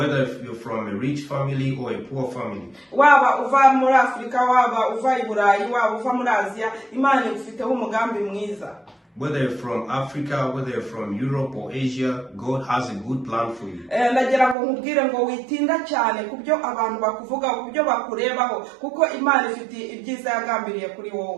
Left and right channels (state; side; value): drops out; left; at 14.6 s